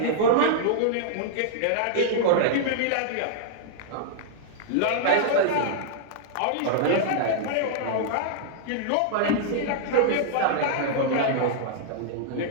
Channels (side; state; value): both; different; correlation -0.01